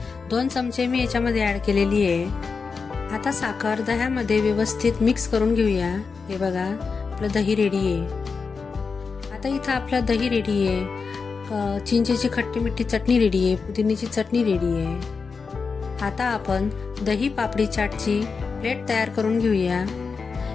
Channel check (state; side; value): quieter; right; 5.0 dB